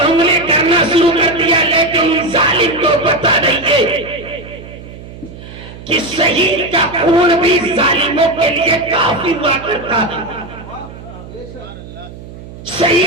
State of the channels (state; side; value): noise; right; hum, 15 dB below the sound